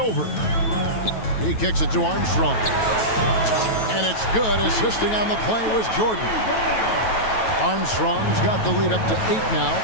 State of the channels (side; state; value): right; late; 9.2 ms